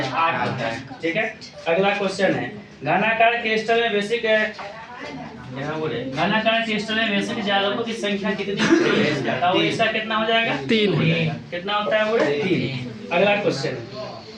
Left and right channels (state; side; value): identical; both; correlation 1.00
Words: 8 होता है, ठीक है। अगला क्वेश्चन है घनाकार क्रिस्टल में बेसिक यहाँ बोले घनाकार क्रिस्टल में बेसिक जालकों की संख्या कितनी होती है? इसका कितना हो जाएगा? 3। कितना होता है बोले? 3। अगला क्वेश्चन